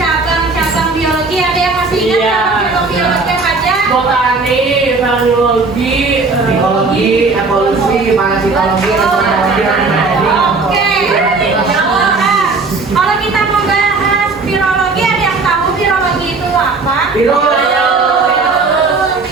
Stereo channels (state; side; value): quieter; left; 3.9 dB